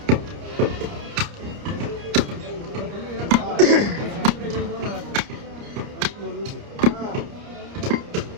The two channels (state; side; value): late; left; 29 ms